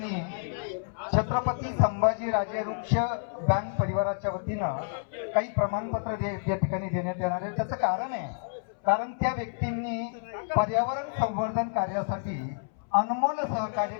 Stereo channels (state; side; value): silent; right; 59 dB below the other